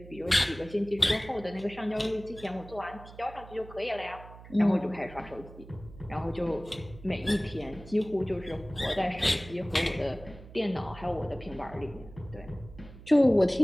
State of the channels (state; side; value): noise; right; hum, 17 dB below the sound